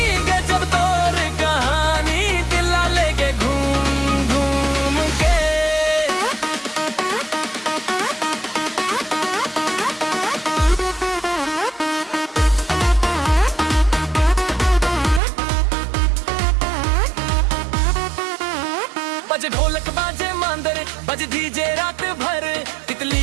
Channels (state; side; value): drops out; left; at 15.2 s